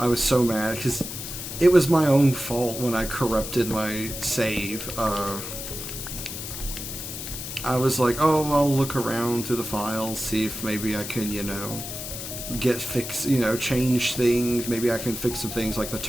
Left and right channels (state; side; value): noise; left; hiss, 7 dB below the sound